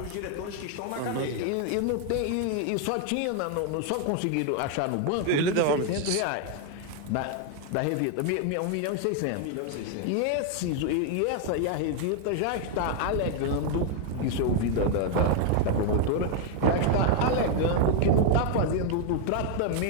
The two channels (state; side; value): different; both; correlation 0.00